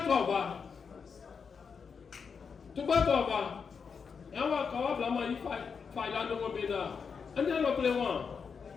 voir. Tu peux pas voir. Et on va quand même il faut là dans mon béda. On est là pour les gens.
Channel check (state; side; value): quieter; right; 5.9 dB